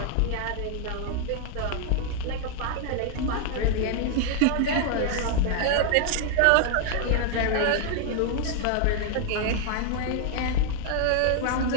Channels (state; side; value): different; both; correlation 0.00